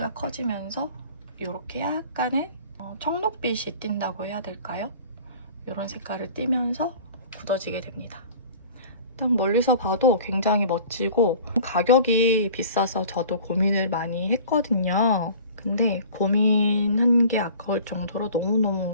커지면서 이렇게 약간의 청록빛이 띈다고 해야 될까요? 이런 색깔을 띠면서 굳어지게 됩니다. 딱 멀리서 봐도 굉장히 멋지고 가격이 비싸서 저도 고민을 많이 했거든요. 근데 고민한 게 아까울 정도로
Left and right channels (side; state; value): both; inverted; correlation -0.45